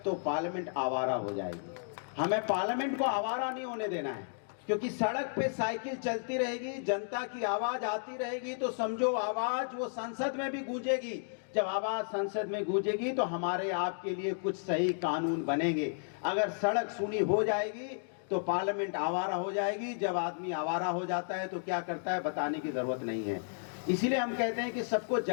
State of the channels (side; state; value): right; silent; digital silence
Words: तो पार्लियामेंट आवारा हो जाएगी। हमें पार्लियामेंट को आवारा नहीं होने देना है, क्योंकि सड़क पे साइकिल चलती रहेगी, जनता की आवाज आती रहेगी, तो समझो आवाज वो संसद में भी गूंजेगी। जब आवाज संसद में गूंजेगी तो हमारे आपके लिए कुछ सही कानून बनेंगे। अगर सड़क सूनी हो जाएगी तो पार्लियामेंट आवारा हो जाएगी। जब आदमी आवारा हो जाता है तो क्या करता है बताने की जरूरत नहीं है। इसीलिए हम कहते हैं कि सबको